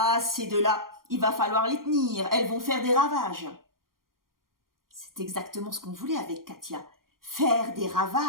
ces deux-là, il va falloir les tenir, elles vont faire des ravages. » C'est exactement ce qu'on voulait avec Katia, faire des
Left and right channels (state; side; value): late; left; 0.91 ms